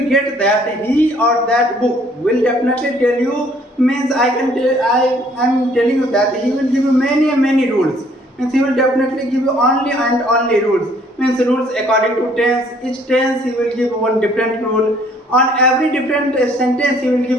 get that he or that book will definitely tell you, means I am telling you that he will give you many rules, means he will definitely give you only and only rules, means rules according to tense. Each tense he will give one different rule. On every different sentence he will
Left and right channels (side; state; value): both; normal; correlation 0.61